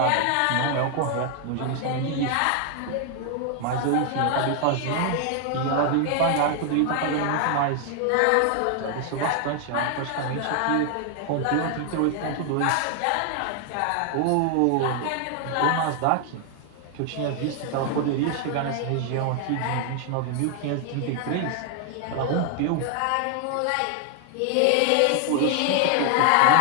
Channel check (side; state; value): both; different; correlation 0.00